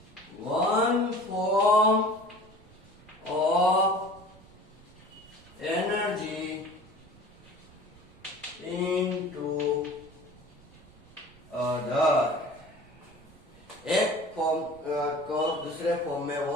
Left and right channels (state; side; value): noise; right; rumble, 23 dB below the sound